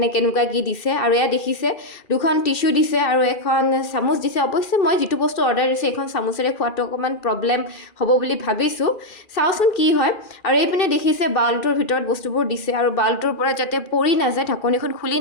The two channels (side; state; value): right; late; 2.4 ms